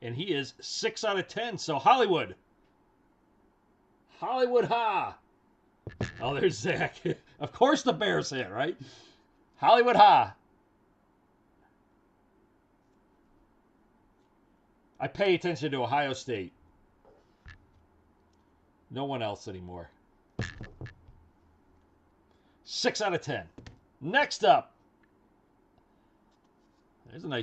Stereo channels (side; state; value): both; identical; correlation 1.00